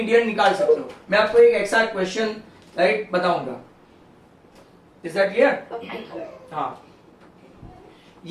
निकाल सकते हो। मैं आपको एक एक्साक्ट क्वेश्चन राइट बताऊंगा। Is that clear? हाँ,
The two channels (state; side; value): identical; both; correlation 1.00